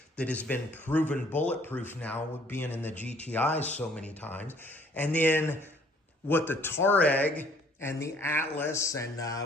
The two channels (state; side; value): normal; both; correlation 0.60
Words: that has been proven bulletproof now with being in the GTIs so many times. And then what the Touareg and the Atlas and